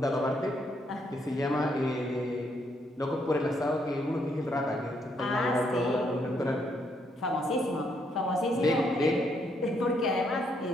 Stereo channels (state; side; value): normal; both; correlation 0.74